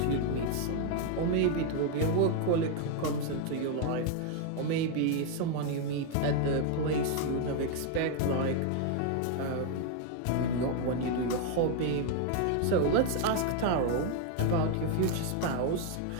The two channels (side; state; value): both; different; correlation 0.00